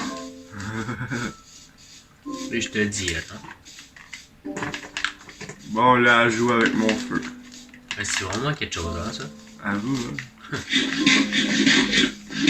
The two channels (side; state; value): both; identical; correlation 1.00